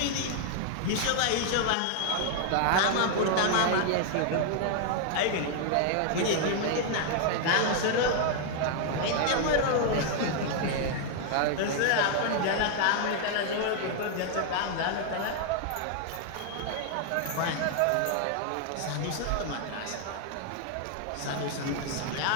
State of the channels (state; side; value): different; both; correlation 0.00